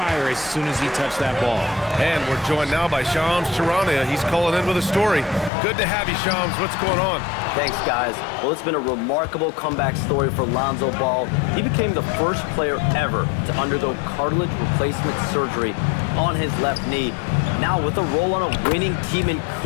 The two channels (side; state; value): right; drops out; at 5.5 s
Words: as soon as he touched that ball. And we're joined now by Shams Charania. He's calling in with a story. Good to have you, Shams. What's going on? Thanks, guys. Well, it's been a remarkable comeback story for Lonzo Ball. He became the first player ever to undergo cartilage replacement surgery on his left knee. Now, with a role on a winning team in